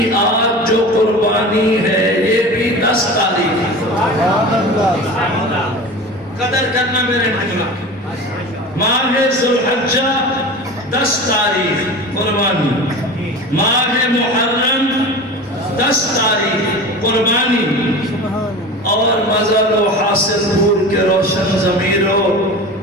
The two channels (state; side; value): normal; both; correlation 0.33